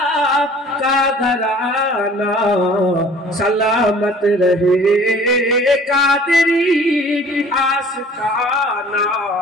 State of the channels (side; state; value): both; normal; correlation 0.50